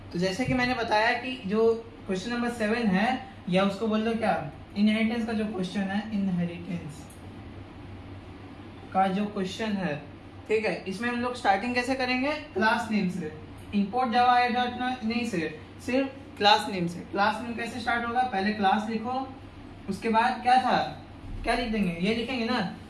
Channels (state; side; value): identical; both; correlation 1.00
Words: तो जैसे कि मैंने बताया कि जो क्वेश्चन नंबर 7 है, या उसको बोल दो क्या, इनहेरिटेंस का जो क्वेश्चन है, इनहेरिटेंस का जो क्वेश्चन है, ठीक है, इसमें हम लोग स्टार्टिंग कैसे करेंगे, क्लास नेम से। इंपोर्ट जावा नहीं से, सिर्फ क्लास नेम से। क्लास नेम कैसे स्टार्ट होगा, पहले क्लास लिखो, उसके बाद क्या था, क्या लिख देंगे, ये लिखेंगे ना,